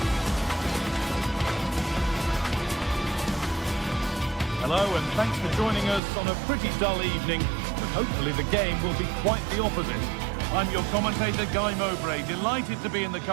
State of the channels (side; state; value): left; drops out; at 6.0 s